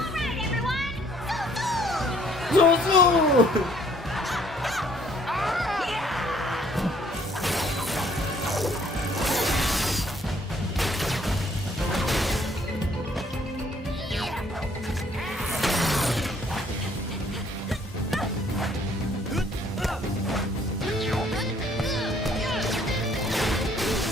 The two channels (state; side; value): normal; both; correlation 0.62